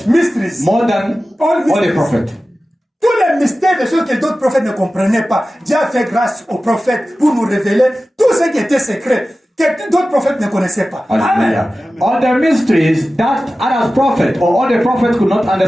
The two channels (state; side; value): normal; both; correlation 0.95